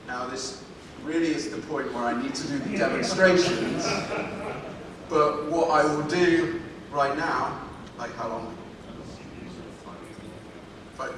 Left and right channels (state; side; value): identical; both; correlation 1.00